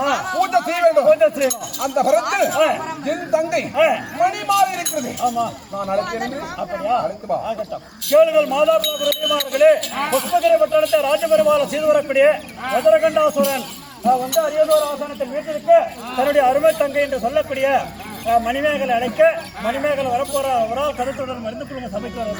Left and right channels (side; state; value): both; identical; correlation 1.00